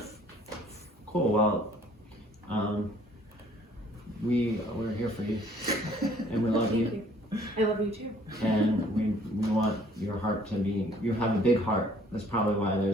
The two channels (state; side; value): normal; both; correlation 0.58